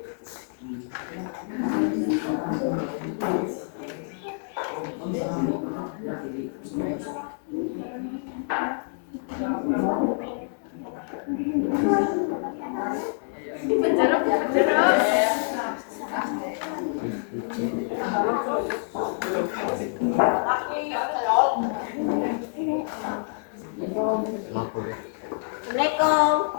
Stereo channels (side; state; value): right; silent; digital silence